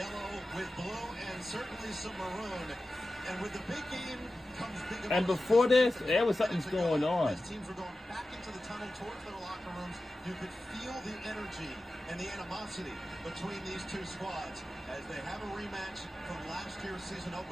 with blue, and certainly some maroon. And with the big game comes big emotion. And before this, there was something going on. As teams were going back into the tunnel towards their locker rooms, you could feel the energy and the animosity between these two squads as they have a rematch from last year's season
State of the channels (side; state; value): both; normal; correlation 0.94